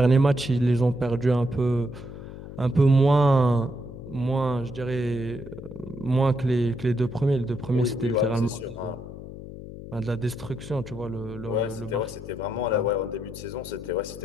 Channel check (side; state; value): left; noise; hum, 12 dB below the sound